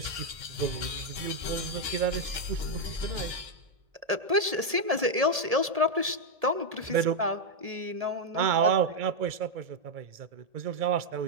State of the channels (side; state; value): left; late; 1.7 ms